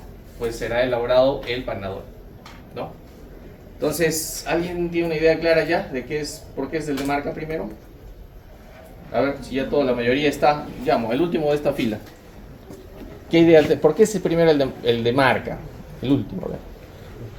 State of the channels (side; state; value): both; identical; correlation 1.00